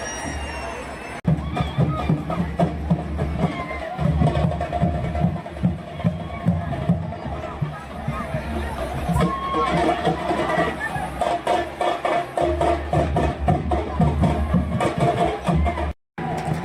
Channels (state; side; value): identical; both; correlation 1.00